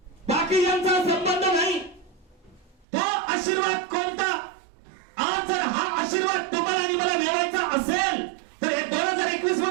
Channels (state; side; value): drops out; left; at 2.9 s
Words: बाकी यांचा संबंध नाही. तो आशीर्वाद कोणता. आज जर हा आशीर्वाद तुम्हाला आणि मला मिळवायचा असेल तर हे 2021